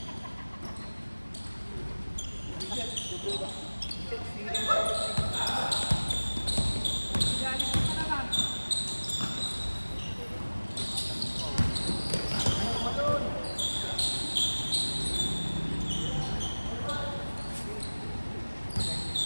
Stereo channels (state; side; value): inverted; both; correlation -1.00